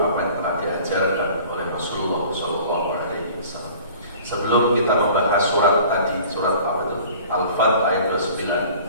apa yang telah diajarkan oleh Rasulullah SAW. Sebelum kita membahas surat tadi, surat apa itu? Al-Fat ayat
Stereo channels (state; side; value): inverted; both; correlation -0.47